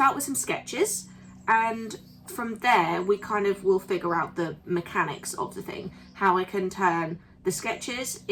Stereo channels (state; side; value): identical; both; correlation 1.00